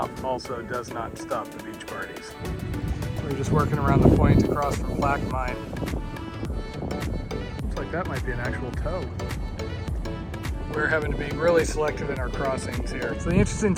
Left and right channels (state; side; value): identical; both; correlation 1.00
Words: also does not stop the beach parties. We're just working around the point across from Plaque Mine. Looks like that might be an actual tow. We're having to be really selective in our crossings here. So the interesting